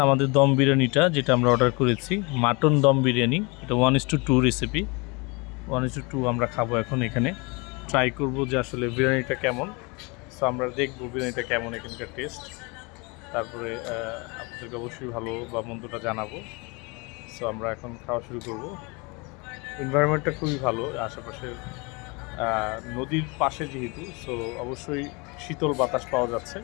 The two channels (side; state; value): right; quieter; 28.6 dB